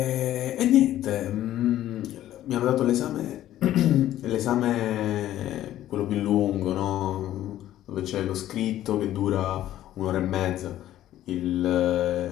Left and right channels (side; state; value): right; quieter; 13.1 dB